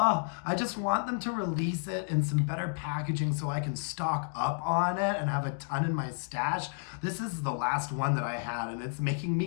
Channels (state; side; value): silent; right; 57 dB below the other